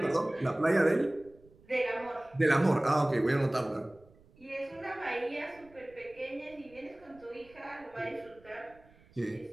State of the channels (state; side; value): noise; right; rumble, 27 dB below the sound